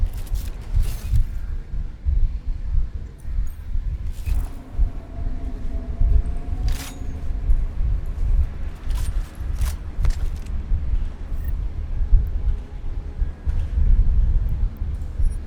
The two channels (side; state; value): both; identical; correlation 1.00